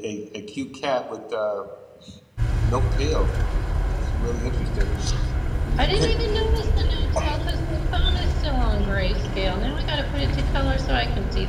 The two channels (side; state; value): both; identical; correlation 1.00